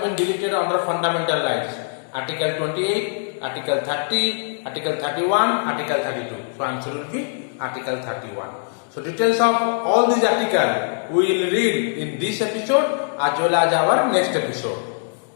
been deleted under fundamental rights? Article 28, Article 30, Article 31, Article 32. So answer will be Article 31. So details of all these articles we will read in this episode as well as our next episode.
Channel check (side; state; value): right; silent; digital silence